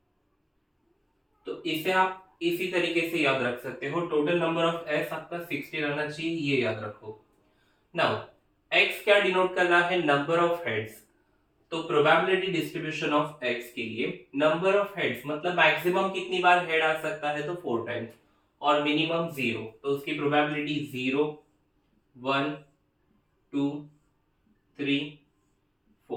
तो इसे आप इसी तरीके से याद रख सकते हो। टोटल नंबर ऑफ एस आपका 60 रहना चाहिए, ये याद रखो। नाउ एक्स क्या डिनोट कर रहा है, नंबर ऑफ हेड्स। तो प्रोबेबिलिटी डिस्ट्रीब्यूशन ऑफ एक्स के लिए नंबर ऑफ हेड्स मतलब मैक्सिमम कितनी बार हेड आ सकता है, तो 4 टाइम्स, और मिनिमम 0, तो उसकी प्रोबेबिलिटी 0, 1, 2, 3,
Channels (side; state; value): both; identical; correlation 1.00